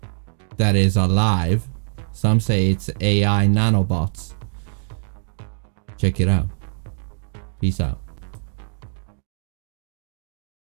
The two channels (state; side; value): silent; left; digital silence